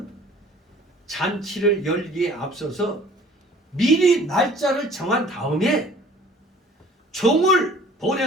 잔치를 열기에 앞서서 미리 날짜를 정한 다음에 종을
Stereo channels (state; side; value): normal; both; correlation 0.51